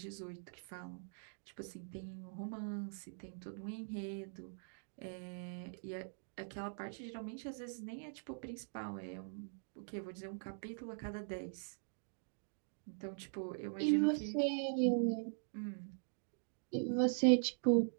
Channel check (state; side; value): silent; left; digital silence